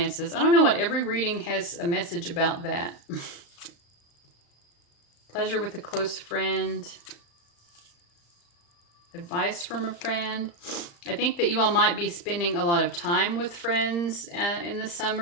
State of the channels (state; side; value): late; right; 35 ms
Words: I don't know what every reading has a message about that. Pleasure with a close friend. Advice from a friend. I think that you all might be spending a lot of time with friends in the